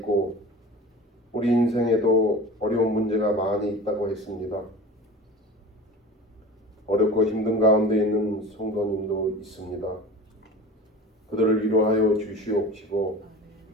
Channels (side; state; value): both; normal; correlation 0.35